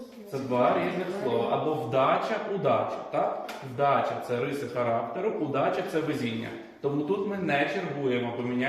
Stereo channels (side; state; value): both; identical; correlation 1.00